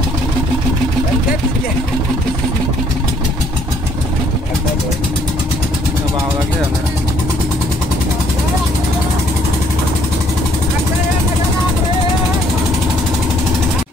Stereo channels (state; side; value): normal; both; correlation 0.65